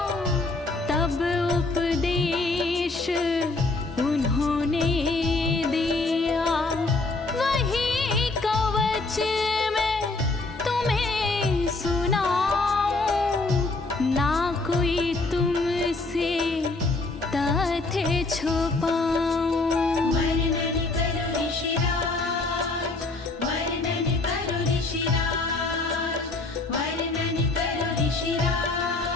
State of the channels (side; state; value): right; quieter; 3.3 dB